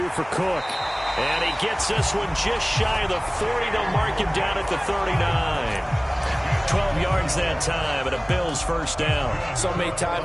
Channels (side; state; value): both; identical; correlation 1.00